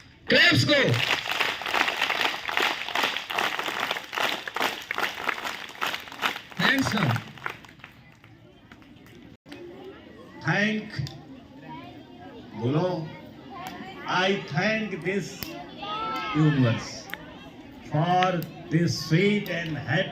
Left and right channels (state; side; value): identical; both; correlation 1.00